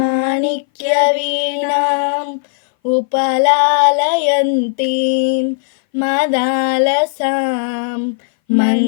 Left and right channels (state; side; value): silent; right; 60 dB below the other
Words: వీణాం ఉపలాలయంతీం మదాలసాం